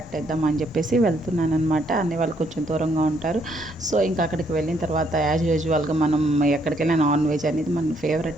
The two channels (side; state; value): both; normal; correlation 0.71